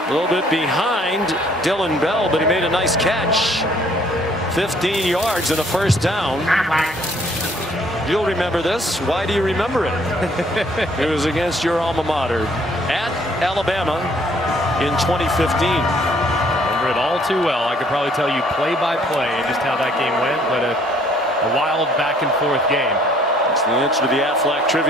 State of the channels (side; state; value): both; normal; correlation 0.62